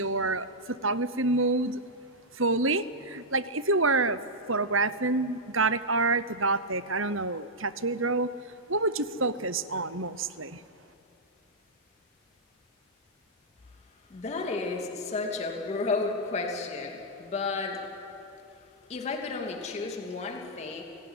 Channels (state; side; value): normal; both; correlation -0.08